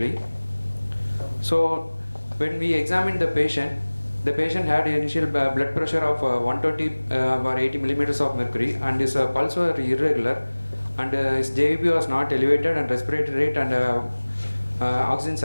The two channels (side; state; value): both; inverted; correlation -1.00